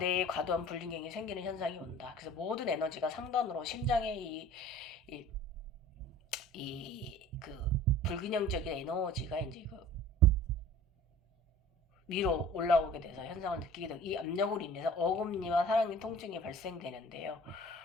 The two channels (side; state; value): both; normal; correlation 0.44